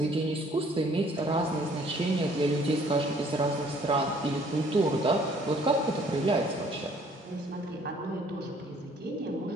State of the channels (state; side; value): normal; both; correlation 0.59